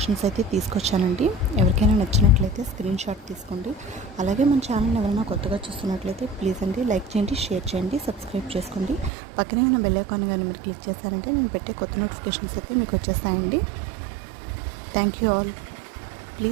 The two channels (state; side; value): drops out; left; at 9.1 s